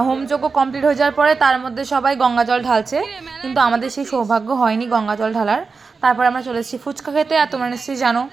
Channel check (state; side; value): quieter; left; 4.6 dB